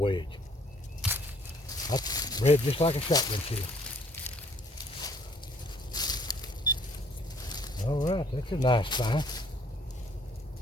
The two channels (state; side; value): normal; both; correlation 0.61